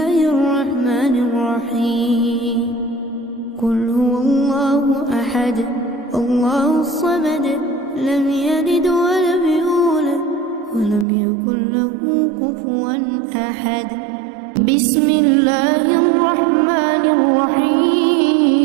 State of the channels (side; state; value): left; drops out; at 11.1 s